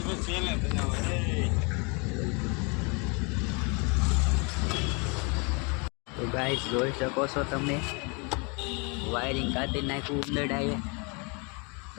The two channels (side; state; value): right; quieter; 32.5 dB